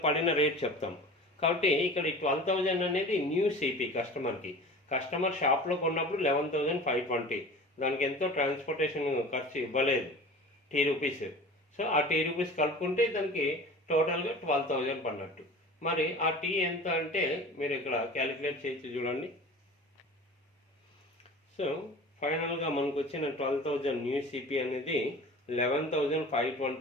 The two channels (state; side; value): normal; both; correlation 0.38